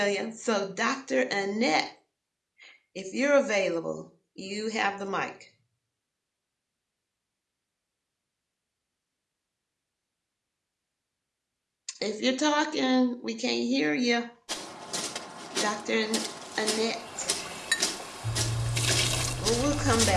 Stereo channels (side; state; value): both; identical; correlation 1.00